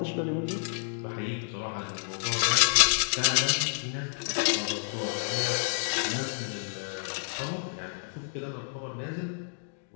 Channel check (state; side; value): silent; right; digital silence